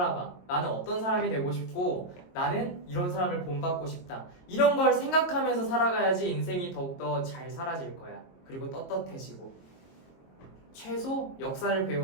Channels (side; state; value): right; late; 22 ms